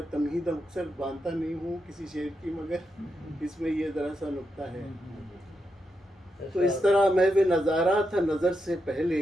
تمہید اکثر باندھتا نہیں ہوں کسی شعر کی، مگر اس میں یہ ذرا سا نکتہ ہے۔ تو اس طرح محو نظارہ تھا نظر سے پہلے،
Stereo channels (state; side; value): normal; both; correlation 0.85